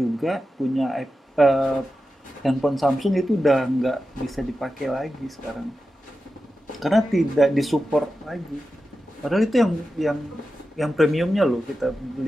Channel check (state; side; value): normal; both; correlation 0.92